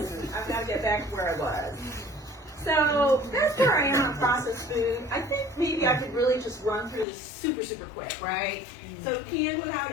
I've got to get back to where I was. So that's where I am on processed food. I think maybe I could really just run through this super quick, right? So canned without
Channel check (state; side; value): drops out; right; at 7.1 s